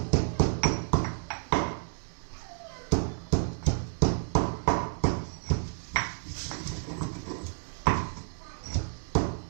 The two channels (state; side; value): silent; left; digital silence